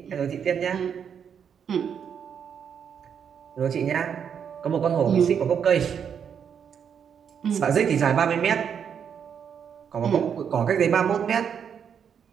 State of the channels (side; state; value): left; quieter; 7.6 dB